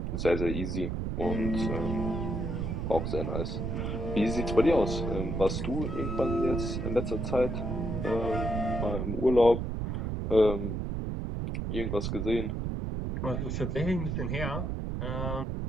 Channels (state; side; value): noise; right; rumble, 2 dB below the sound